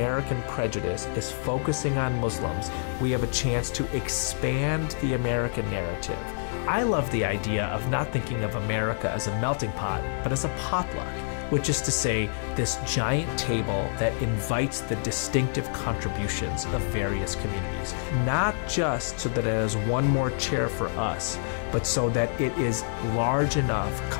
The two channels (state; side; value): silent; right; digital silence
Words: prejudice is focusing on Muslims, we have a chance to expand the American narrative. I love the idea of not thinking of America as a melting pot, but as a potluck, which is to say this giant table that invites the distinctive contributions of various communities, not just so that there's one more chair for us, but so that it is large enough,